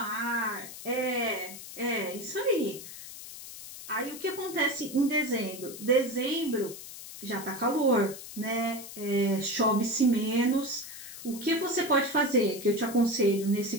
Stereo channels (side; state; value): left; noise; hiss, 13 dB below the sound